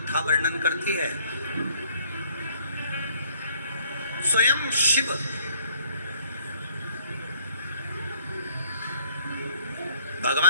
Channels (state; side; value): inverted; both; correlation -0.62